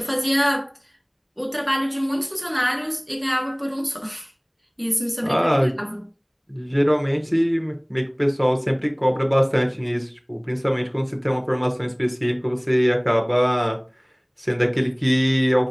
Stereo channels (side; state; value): both; identical; correlation 1.00